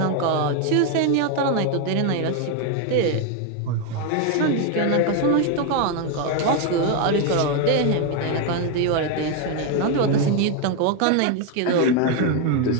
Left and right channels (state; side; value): different; both; correlation 0.01